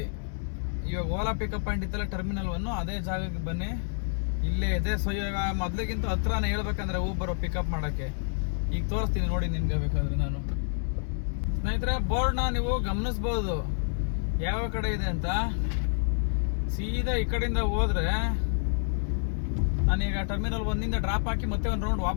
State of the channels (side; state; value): right; silent; digital silence